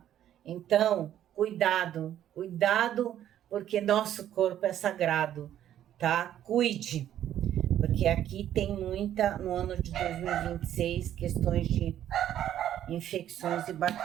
Então, cuidado, cuidado, porque nosso corpo é sagrado, tá? Cuide. Porque aqui tem muita, no ano de 2026, questões de infecções e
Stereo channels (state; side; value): quieter; left; 11.3 dB